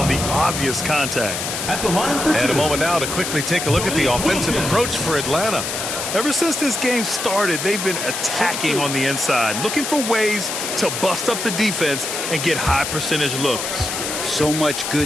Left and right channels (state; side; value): noise; left; hiss, 4 dB below the sound